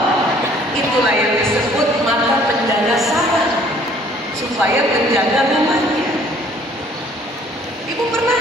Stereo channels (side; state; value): both; normal; correlation 0.57